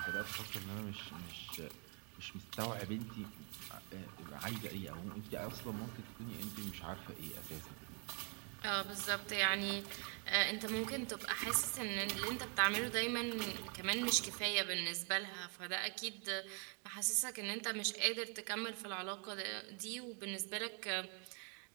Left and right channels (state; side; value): quieter; left; 37.6 dB